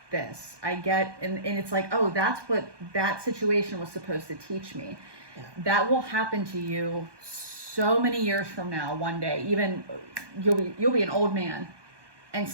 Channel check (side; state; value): left; late; 1.2 ms